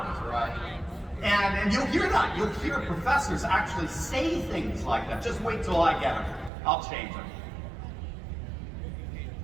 right? And you'll hear that. You'll hear professors actually say things like that. Just wait till I get them. I'll change them.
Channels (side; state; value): left; drops out; at 6.5 s